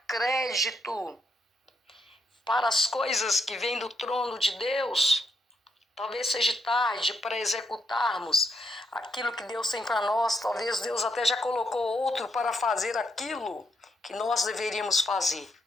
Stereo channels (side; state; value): both; normal; correlation 0.78